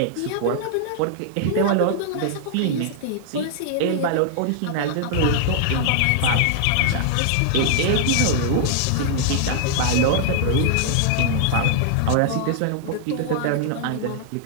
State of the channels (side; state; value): both; different; correlation -0.01